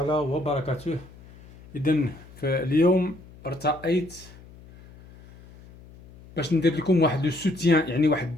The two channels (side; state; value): left; noise; hum, 21 dB below the sound